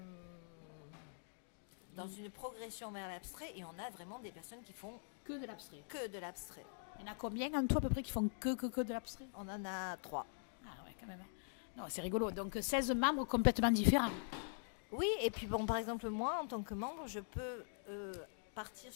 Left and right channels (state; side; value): silent; right; digital silence